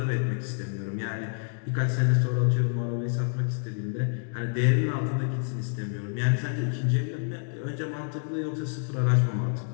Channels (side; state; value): right; silent; 59 dB below the other